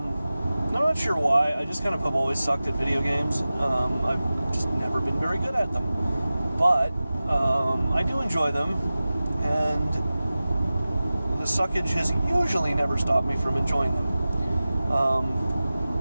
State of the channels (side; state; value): both; inverted; correlation -0.96